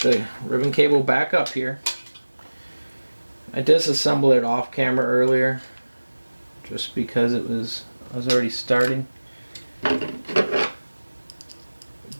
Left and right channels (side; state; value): both; inverted; correlation -1.00